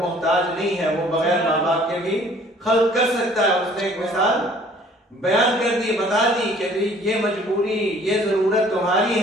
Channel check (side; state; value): both; normal; correlation 0.55